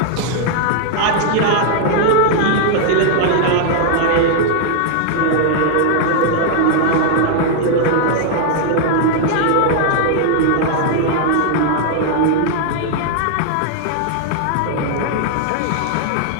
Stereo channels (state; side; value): different; both; correlation 0.00